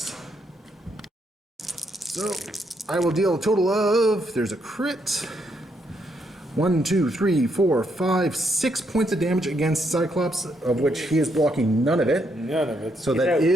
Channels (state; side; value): normal; both; correlation 0.76